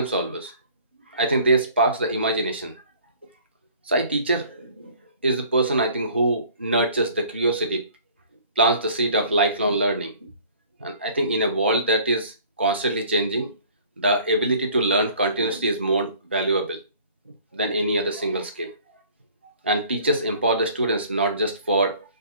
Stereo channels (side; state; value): both; inverted; correlation -0.52